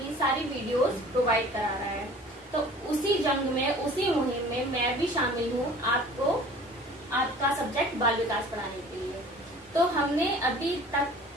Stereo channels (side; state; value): both; normal; correlation 0.47